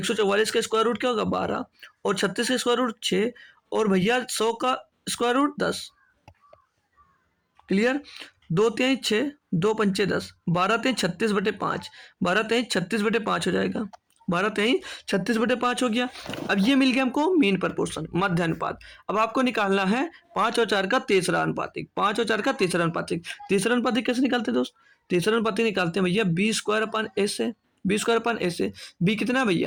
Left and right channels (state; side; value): identical; both; correlation 1.00